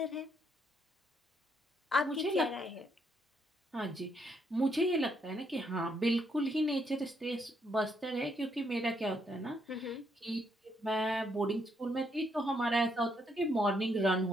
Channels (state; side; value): normal; both; correlation 0.74